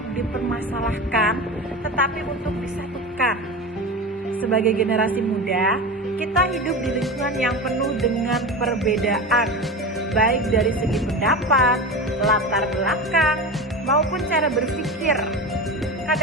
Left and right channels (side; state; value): both; normal; correlation 0.26